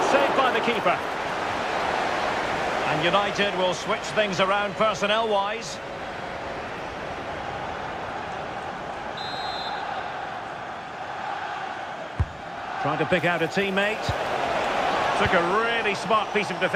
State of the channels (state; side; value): identical; both; correlation 1.00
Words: saved by the keeper. And United will switch things around personnel-wise. Trying to pick out a teammate. Took a really smart piece of